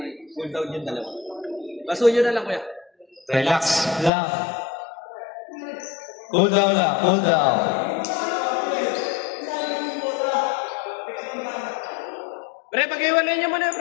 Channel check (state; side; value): drops out; right; at 4.1 s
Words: cool down yung dalawa. Basuyo na lang, kuya. Relax lang. Cool down lang. Cool down. Pre, pag-iwalay niyo muna,